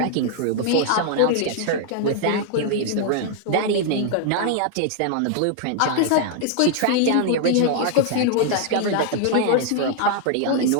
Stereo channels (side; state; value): both; different; correlation 0.00